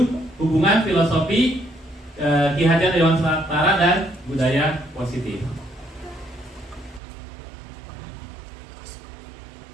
hubungan filosofi, Ki Hajar Dewantara dan budaya positif.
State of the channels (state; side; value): drops out; left; at 7.0 s